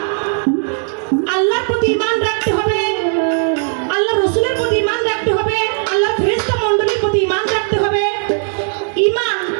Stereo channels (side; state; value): left; silent; 56 dB below the other